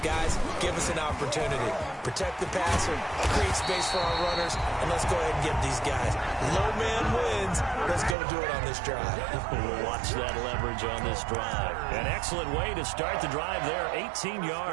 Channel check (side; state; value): left; drops out; at 8.2 s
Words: give us an opportunity. Protect the passer, create space for our runners, and let's go ahead and get these guys. Low man wins. Let's go do it on this drive. We'll watch that leverage on this drive. An excellent way to start the drive there, 18